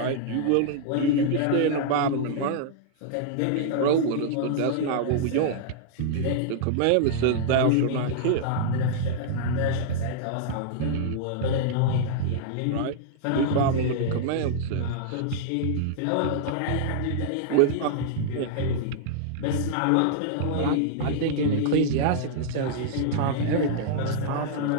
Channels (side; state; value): both; different; correlation -0.02